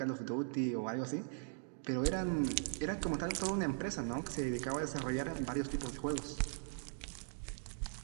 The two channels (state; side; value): silent; left; digital silence